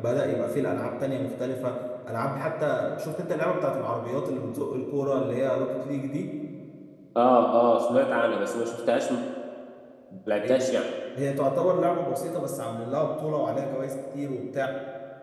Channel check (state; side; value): identical; both; correlation 1.00